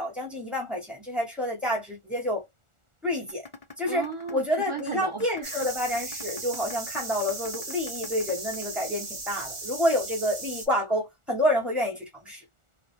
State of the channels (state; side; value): late; left; 1.4 ms